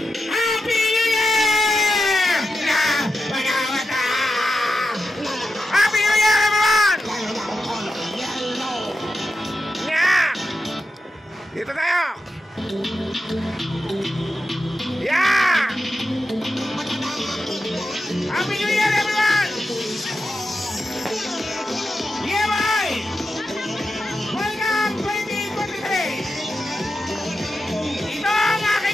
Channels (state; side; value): normal; both; correlation 0.89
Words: Happy New Year! Happy New Year, everyone! Yeah! Dito tayo! Yeah! Happy New Year, everyone! Yeah, boy! Welcome 2023! Ito ang